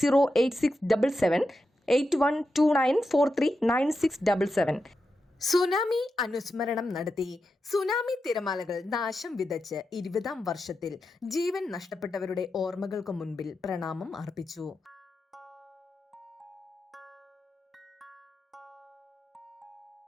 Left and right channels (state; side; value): normal; both; correlation 0.88